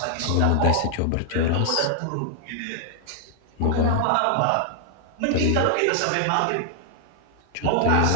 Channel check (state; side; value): different; both; correlation 0.00